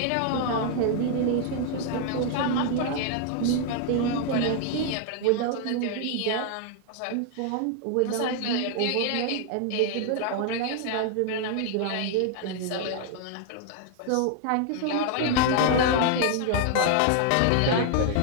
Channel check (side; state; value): both; different; correlation 0.00